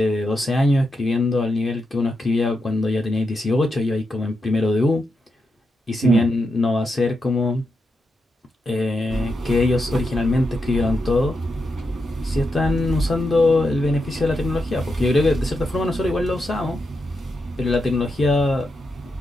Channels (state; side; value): normal; both; correlation 0.85